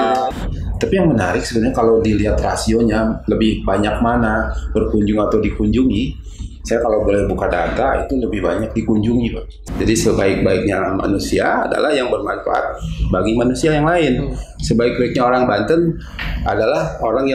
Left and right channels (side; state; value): both; identical; correlation 1.00